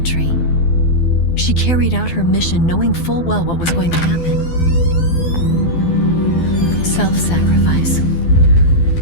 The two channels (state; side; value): late; right; 12 ms